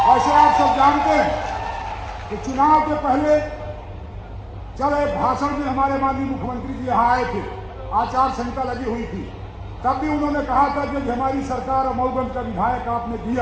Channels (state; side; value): identical; both; correlation 1.00